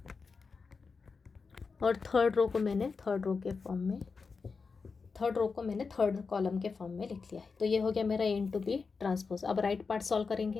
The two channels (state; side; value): quieter; right; 4.8 dB